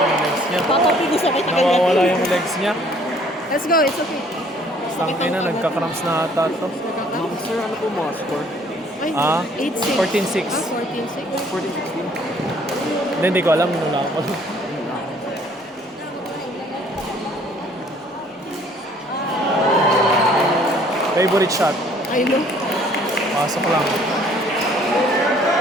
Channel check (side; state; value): both; normal; correlation 0.58